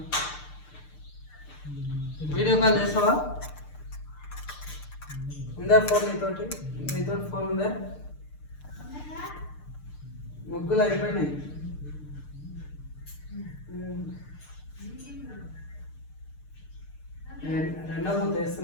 వీడియో కాల్ చేస్తావా? ఉందా ఫోన్ నీతో ఫోన్ ఉందా? ముగ్గులు అయిపోయినాయి. రెండో మూత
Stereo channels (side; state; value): right; late; 6.7 ms